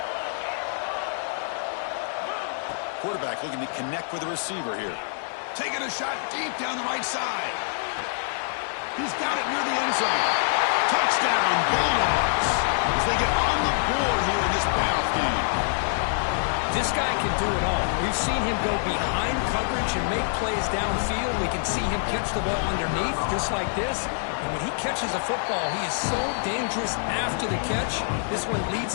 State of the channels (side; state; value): right; silent; digital silence